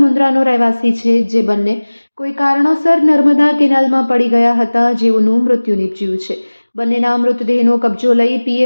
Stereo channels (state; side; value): inverted; both; correlation -1.00